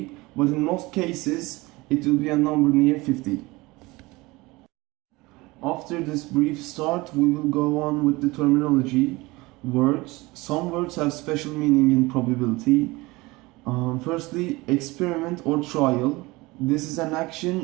but in most cases it will be a number near 50. After this brief start, we will go on with the terminology. Words. Some words have special meaning in probability. Firstly, experiment or trial. This is an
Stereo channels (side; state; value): left; quieter; 22.1 dB